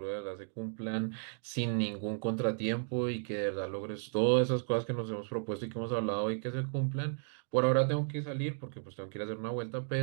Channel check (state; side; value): silent; left; digital silence